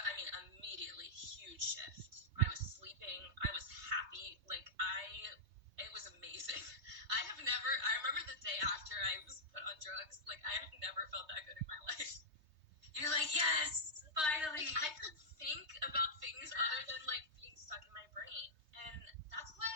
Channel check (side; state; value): left; late; 3.2 ms